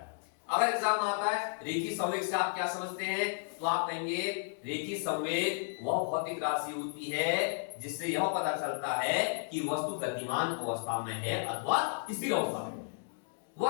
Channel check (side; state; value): right; silent; digital silence